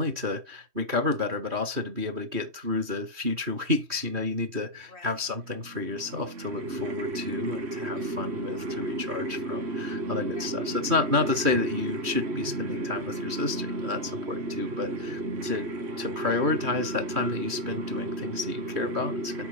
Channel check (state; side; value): late; left; 3.1 ms